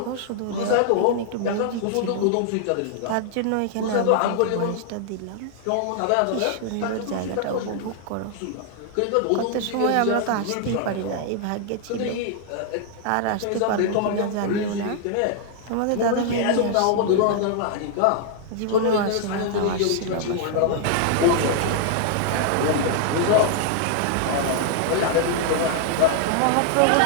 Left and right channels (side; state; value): both; different; correlation 0.00